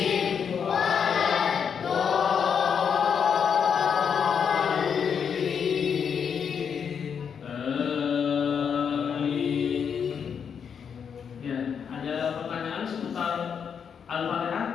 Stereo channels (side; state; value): right; quieter; 7.1 dB